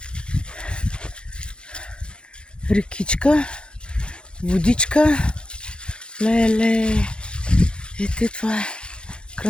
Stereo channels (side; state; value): right; late; 0.053 ms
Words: Рекичка, водичка. Леле. Ето това е